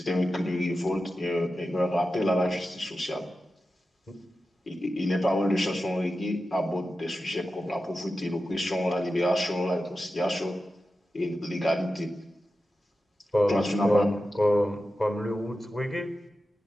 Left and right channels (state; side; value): normal; both; correlation 0.92